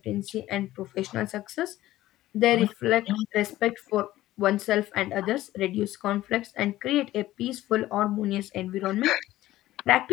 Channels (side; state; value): right; quieter; 15.4 dB